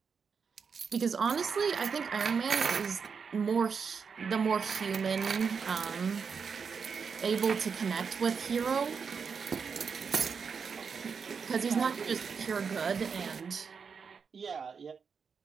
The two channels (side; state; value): left; quieter; 5.9 dB